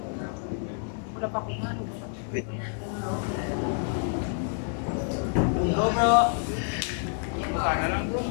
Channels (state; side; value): silent; right; 55 dB below the other